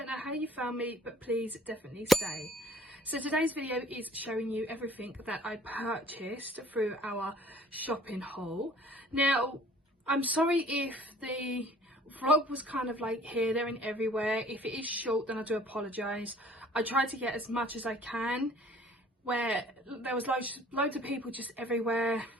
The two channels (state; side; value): normal; both; correlation 0.53